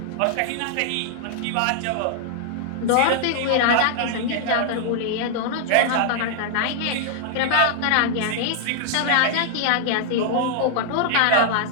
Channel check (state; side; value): different; both; correlation -0.01